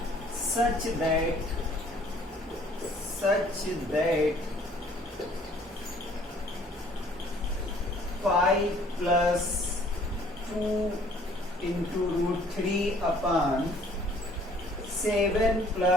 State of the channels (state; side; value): normal; both; correlation 0.57